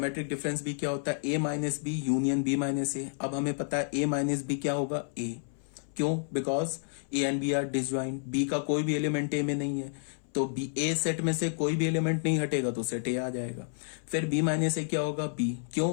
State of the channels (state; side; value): silent; right; 58 dB below the other